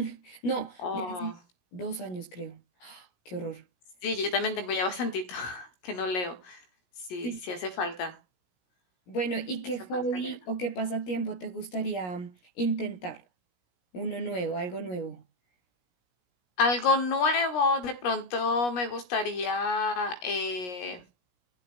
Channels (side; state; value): right; late; 17 ms